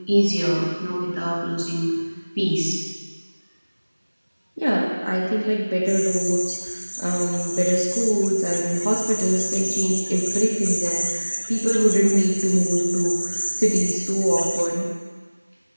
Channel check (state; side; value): inverted; both; correlation -1.00